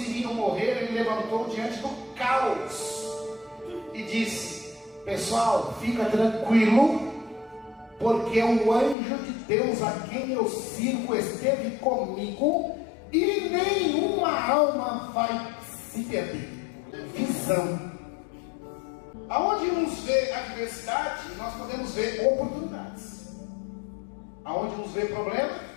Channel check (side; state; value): right; drops out; at 9.0 s